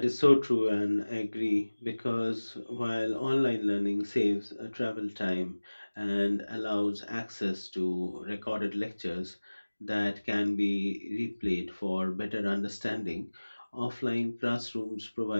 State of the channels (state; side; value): inverted; both; correlation -1.00